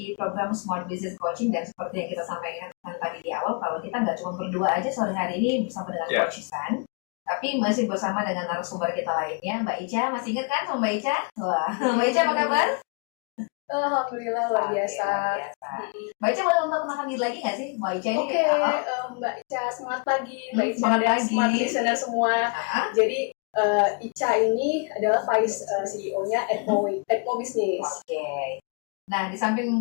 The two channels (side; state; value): right; quieter; 35.8 dB